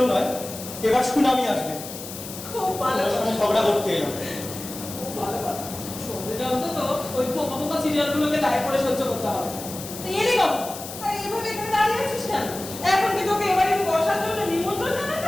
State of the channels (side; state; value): left; noise; hiss, 11 dB below the sound